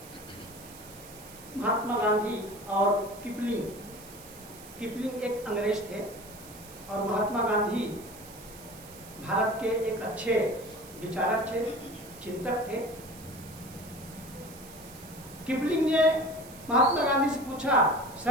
महात्मा गांधी और किपलिंग एक अंग्रेज थे और महात्मा गांधी भारत के एक अच्छे विचारक थे, चिंतक थे। किपलिंग ने महात्मा गांधी से पूछा,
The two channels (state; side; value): noise; right; hiss, 18 dB below the sound